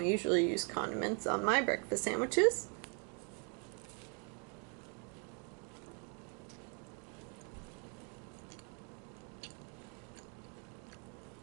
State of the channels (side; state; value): left; quieter; 38.4 dB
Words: usually use condiments on my breakfast sandwiches.